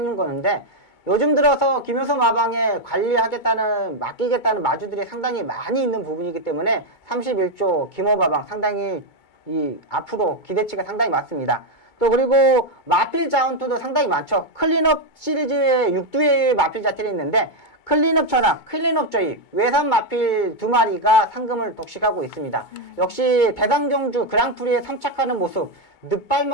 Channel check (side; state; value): right; late; 2.2 ms